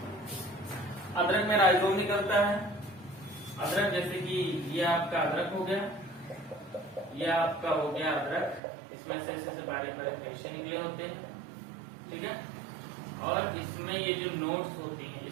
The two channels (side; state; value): left; drops out; at 8.6 s